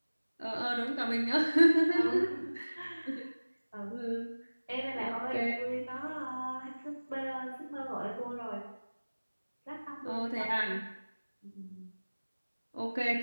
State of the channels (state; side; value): inverted; both; correlation -1.00